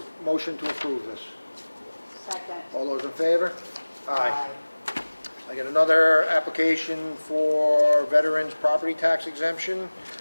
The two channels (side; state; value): both; inverted; correlation -1.00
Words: motion to approve this. Second. All those in favor? Aye. I got another application for veterans property tax exemption